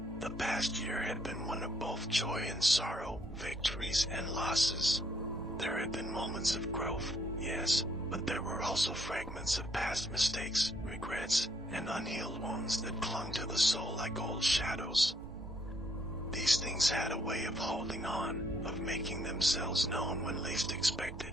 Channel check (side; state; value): both; normal; correlation 0.69